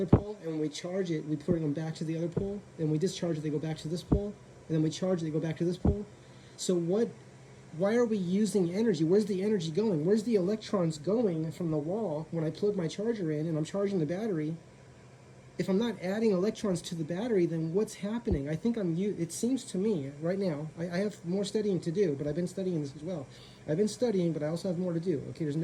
pole, and when we charge it, we bring them back to the other pole, and we discharge it, they go back to this pole, and then we charge it, they go back to this pole? So why are we using energy? Where's the energy going? Where's the electrons going from the wall when I plug my charger in and I'm charging the battery? If I'm not adding electrons to the battery, then what's happening? I think it seems to me right now, I have more studying to do, but I've been studying this as well. I've been studying, but I also have more to do. Okay, there's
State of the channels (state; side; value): identical; both; correlation 1.00